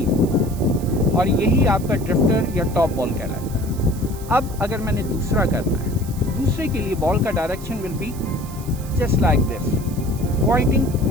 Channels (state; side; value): noise; right; hiss, 17 dB below the sound